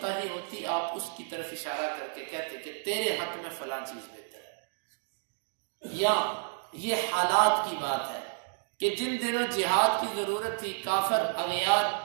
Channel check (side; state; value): left; silent; digital silence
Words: ہوتی آپ اس کی طرف اشارہ کر کے کہتے کہ تیرے حق میں فلاں چیز بہتر ہے. یا یہ حالات کی بات ہے کہ جن دنوں جہاد کی ضرورت تھی، کافر اغیار